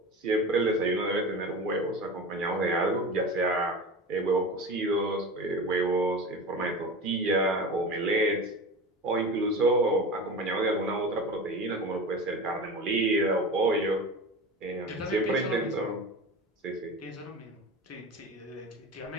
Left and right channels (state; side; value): normal; both; correlation 0.31